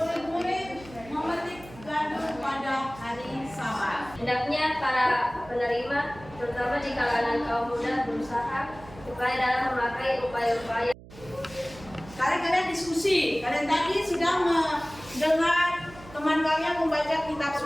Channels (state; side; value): noise; right; hum, 19 dB below the sound